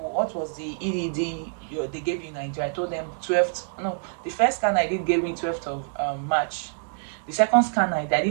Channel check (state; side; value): silent; left; digital silence